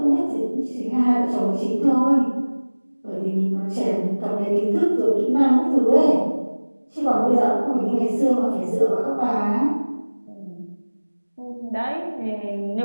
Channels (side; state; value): both; inverted; correlation -1.00